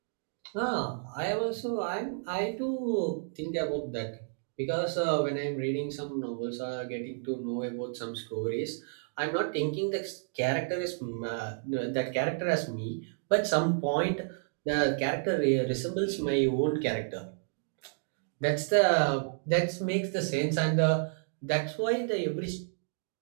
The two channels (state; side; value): silent; left; digital silence